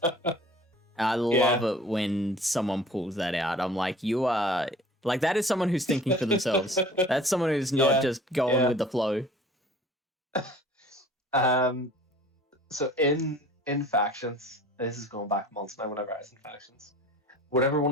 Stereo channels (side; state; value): both; normal; correlation 0.47